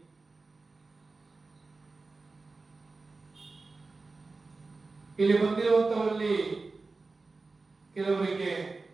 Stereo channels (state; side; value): quieter; left; 3.7 dB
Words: ಇಲ್ಲಿ ಬಂದಿರುವಂತವರಲ್ಲಿ ಕೆಲವರಿಗೆ